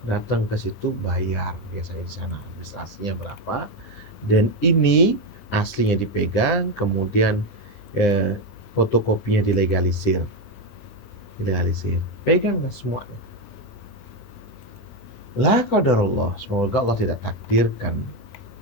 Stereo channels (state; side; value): late; right; 9.9 ms